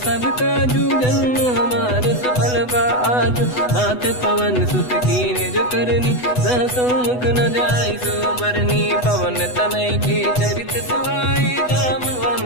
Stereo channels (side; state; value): right; late; 8.1 ms